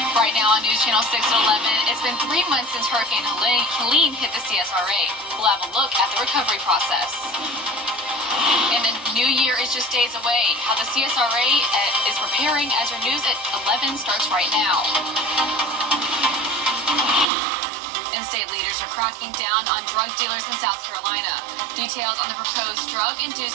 Right now on News Channel 6 at 11, it's been 3 months since Hurricane Helene hit the CSRA. We'll have a look at the recovery process. And the new year is just days away. How the CSRA is preparing as your news at 11 starts right now. And state leaders are cracking down on drug dealers in South Carolina. Details on the proposed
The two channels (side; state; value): left; drops out; at 17.2 s